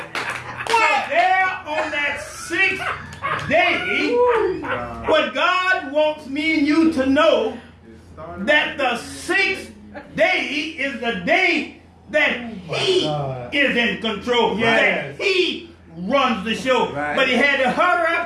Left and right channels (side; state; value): both; identical; correlation 1.00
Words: So there on that 6th day, what God wants me and you to know that the sixth day is the day that he is in control. That he runs the show. But he had to hurry